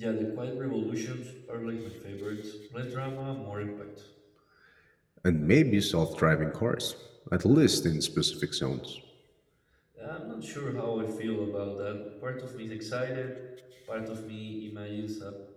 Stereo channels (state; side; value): identical; both; correlation 1.00